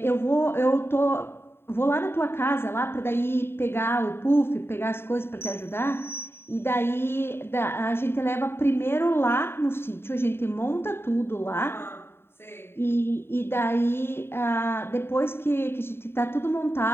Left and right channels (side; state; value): right; late; 0.11 ms